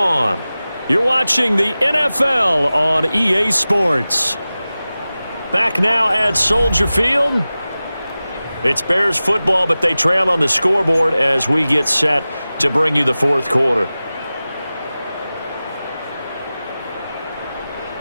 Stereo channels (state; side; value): inverted; both; correlation -0.96